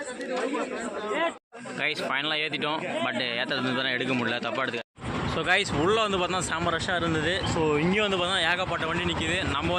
கைஸ் ஃபைனலாக ஏற்றிட்டோம். பட் ஏற்றுறது தானே எடுக்க முடியல. தப்பாக எடுத்துக்க. ஸோ கைஸ் உள்ளே வந்து பார்த்தா செம்ம ரஷ்ஷாக இருந்தது. ஸோ இங்கேயும் வந்து பார்த்தா ஏகப்பட்ட வண்டி நிற்கிது. நம்ம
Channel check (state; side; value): identical; both; correlation 1.00